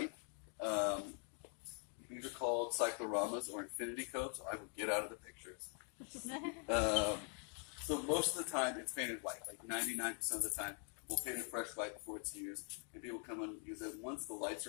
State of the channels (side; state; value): right; quieter; 39.0 dB